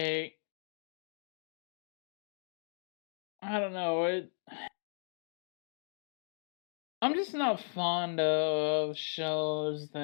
I don't know. I'm just not fond of shows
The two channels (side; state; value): right; silent; digital silence